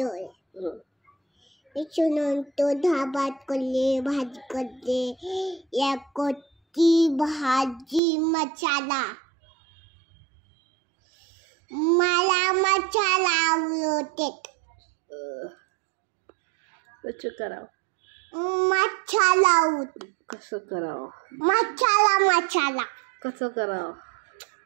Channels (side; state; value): left; drops out; at 8.0 s